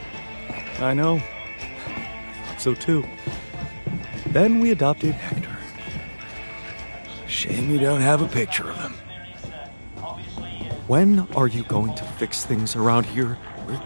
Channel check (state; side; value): inverted; both; correlation -1.00